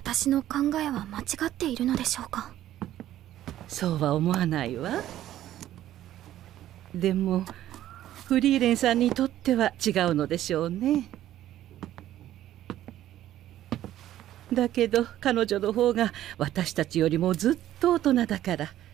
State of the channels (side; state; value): left; quieter; 12.9 dB